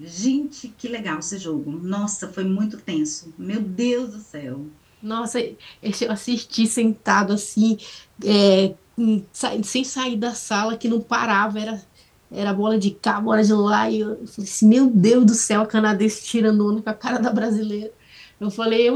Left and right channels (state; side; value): identical; both; correlation 1.00